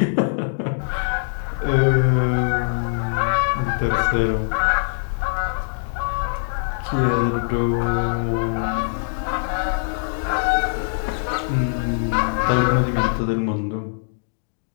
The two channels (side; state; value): right; silent; digital silence